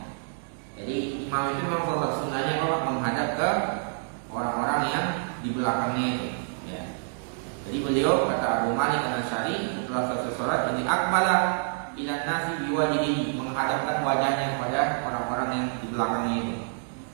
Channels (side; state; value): left; silent; digital silence